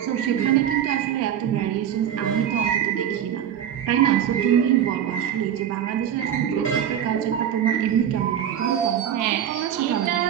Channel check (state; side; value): quieter; left; 9.8 dB